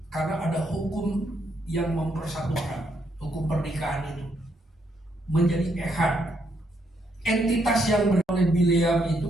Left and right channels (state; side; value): normal; both; correlation 0.75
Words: karena ada hukum yang mempersatukan, hukum pernikahan itu menjadi Echad. Entitas yang oleh Bileam itu